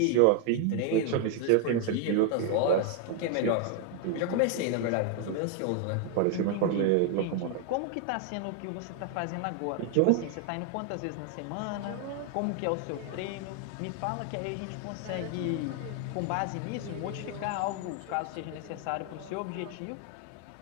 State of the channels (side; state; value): both; different; correlation 0.00